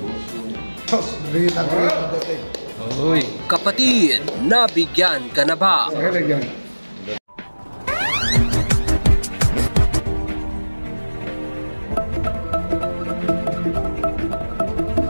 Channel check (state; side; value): inverted; both; correlation -1.00